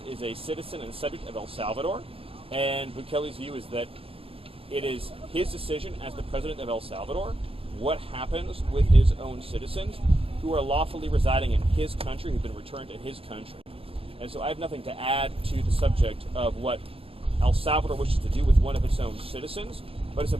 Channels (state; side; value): late; left; 0.27 ms